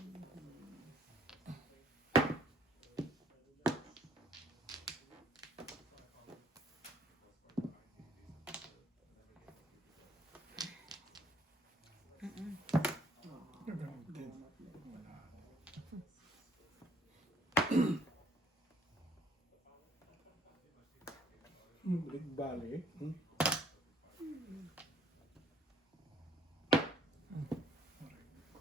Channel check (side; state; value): both; normal; correlation 0.61